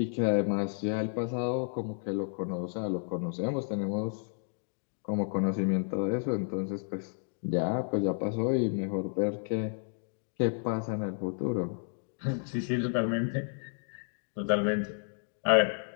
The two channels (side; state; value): right; silent; 57 dB below the other